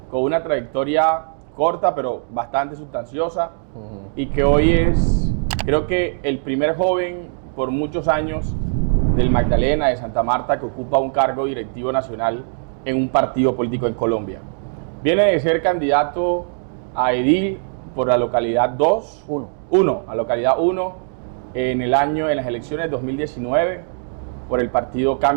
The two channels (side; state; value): left; silent; digital silence